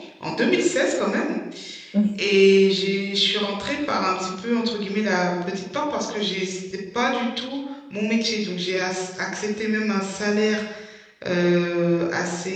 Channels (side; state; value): both; identical; correlation 1.00